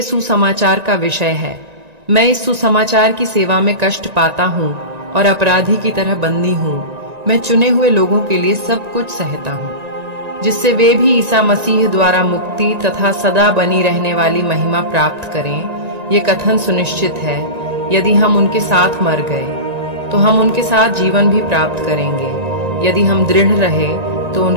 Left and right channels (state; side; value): late; left; 1.9 ms